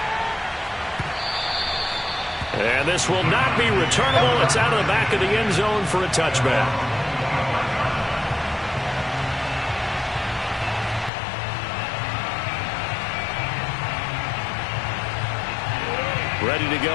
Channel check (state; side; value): drops out; right; at 11.1 s